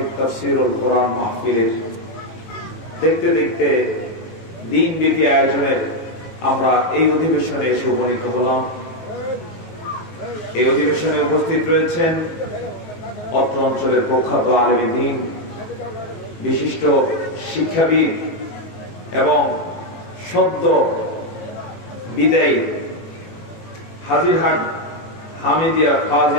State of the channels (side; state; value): right; late; 18 ms